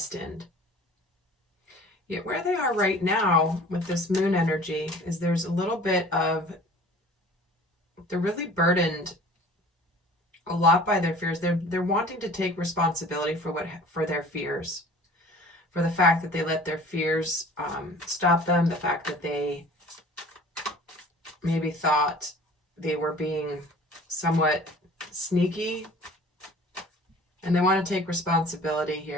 Yet where they are right now with this moon energy is there's a little bit of, they're really burdened a lot by their fears. They're wanting to take responsibility for their fears, for the fact that they let their fears stop them, the fact that they maybe thought they were being somewhat sneaky, and they want to take responsibility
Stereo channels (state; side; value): normal; both; correlation 0.46